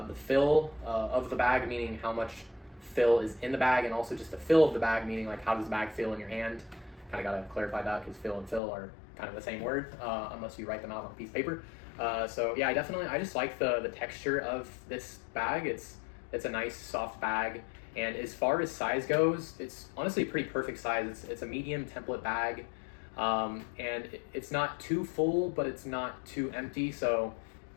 fill of the bag, meaning how much fill is in the bag, and also just the fill of the bag, meaning like how does the bag feel in your hand. Kind of got to clarify that, because fill and fill are kind of the same word, unless you write them out on a piece of paper. So yeah, I just like the texture of this bag. It's a nice soft bag, and as far as size goes, it's honestly a pretty perfect size. It's a medium template bag. And it's not too full, but it's not too empty, so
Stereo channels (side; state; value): right; drops out; at 8.6 s